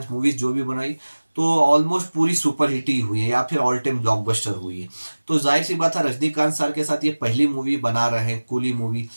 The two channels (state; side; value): inverted; both; correlation -1.00